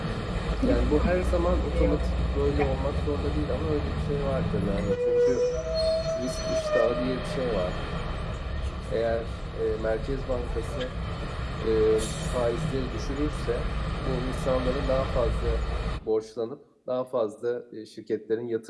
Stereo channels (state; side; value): identical; both; correlation 1.00